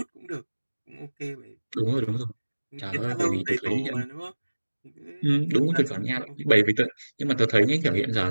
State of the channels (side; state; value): both; inverted; correlation -1.00